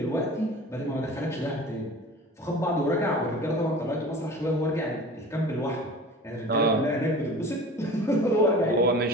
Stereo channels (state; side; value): normal; both; correlation 0.39